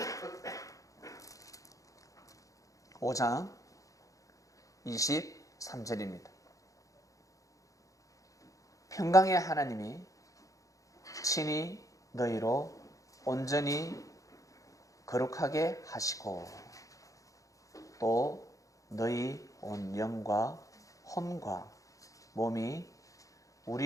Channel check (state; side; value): late; right; 0.16 ms